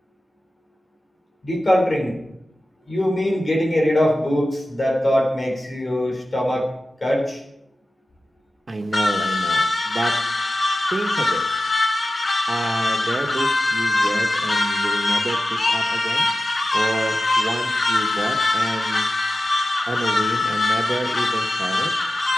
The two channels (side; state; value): both; normal; correlation 0.94